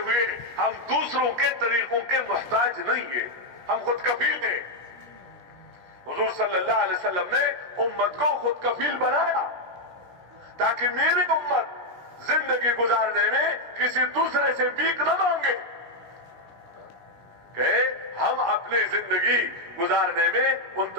ہم دوسروں کے طریقوں کے محتاج نہیں ہیں، ہم خود کفیل ہیں۔ حضور صلی اللہ علیہ وسلم نے امت کو خود کفیل بنایا تاکہ میری امت زندگی گزارنے میں کسی دوسرے سے بھیک نہ مانگے، کہ ہم اپنی زندگی گزارنے میں ان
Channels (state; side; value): late; left; 17 ms